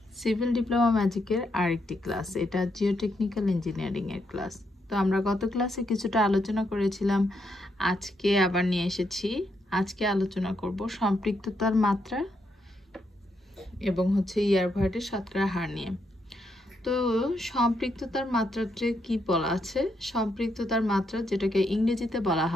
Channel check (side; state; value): both; normal; correlation 0.79